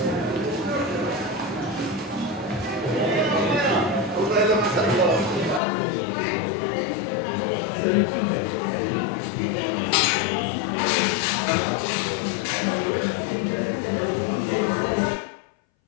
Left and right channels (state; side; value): drops out; right; at 5.6 s